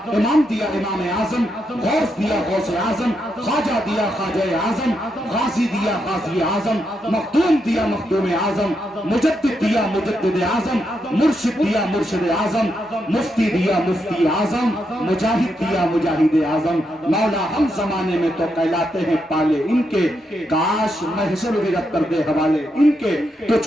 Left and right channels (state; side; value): normal; both; correlation 0.82